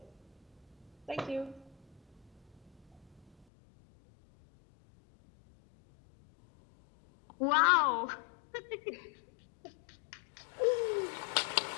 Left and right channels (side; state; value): right; drops out; at 3.5 s